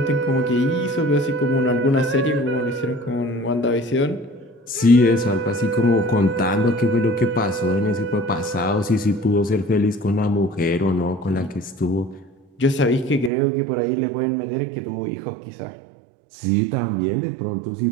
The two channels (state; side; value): drops out; left; at 13.3 s